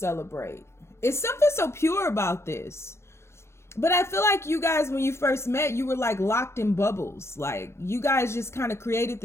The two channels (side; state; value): right; late; 0.13 ms